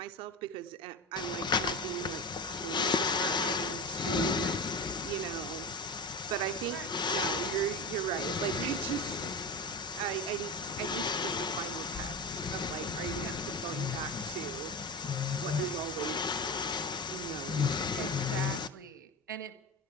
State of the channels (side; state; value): both; normal; correlation 0.23